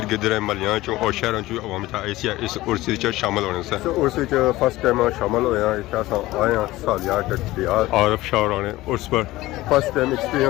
गिर्द महलियां चों और शहरों चों अवाम इतना आई सी इस उर्स विच शामिल होने से उर्स विच फर्स्ट टाइम शामिल होया इतना सा आए हैं सालिया डियाल आरफ शाह राणे उर्स पर फर्स्ट टाइम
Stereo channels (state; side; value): quieter; right; 17.9 dB